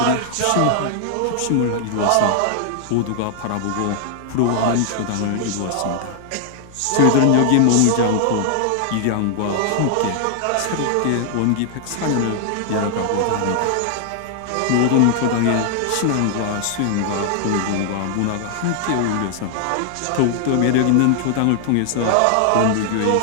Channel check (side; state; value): both; different; correlation 0.00